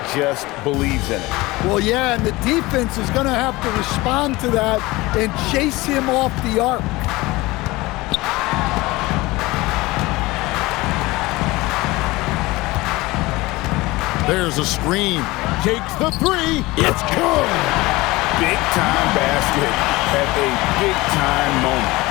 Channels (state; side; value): quieter; right; 20.9 dB